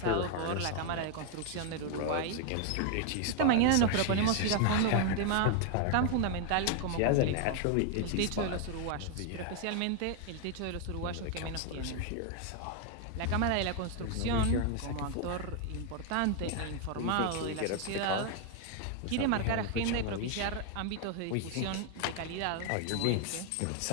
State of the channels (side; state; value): both; different; correlation 0.00